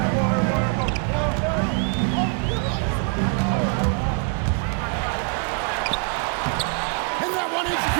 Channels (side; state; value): left; quieter; 36.6 dB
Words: And that one is